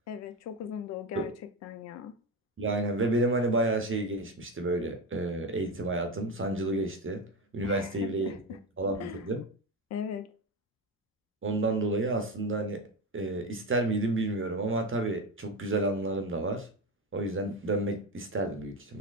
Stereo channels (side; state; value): both; normal; correlation 0.18